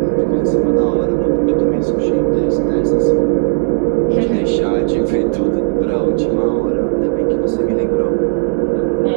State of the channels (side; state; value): left; silent; digital silence